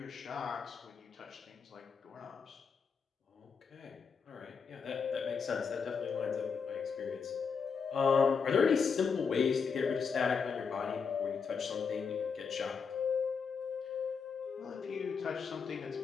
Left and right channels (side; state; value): right; quieter; 5.9 dB